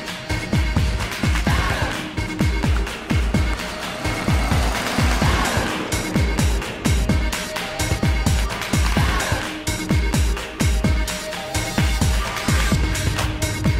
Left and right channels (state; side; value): identical; both; correlation 1.00